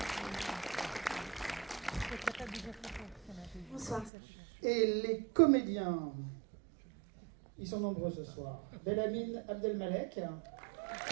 Bonsoir. Et les comédiens, ils sont nombreux ce soir. Belhamine Abdelmalek,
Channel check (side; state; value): left; drops out; at 4.1 s